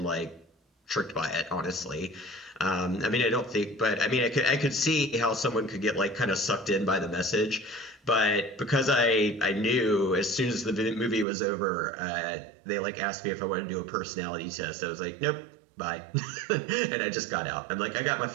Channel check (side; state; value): left; drops out; at 11.2 s